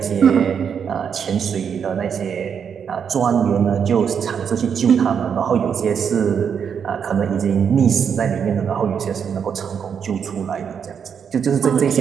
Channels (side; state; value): left; quieter; 7.3 dB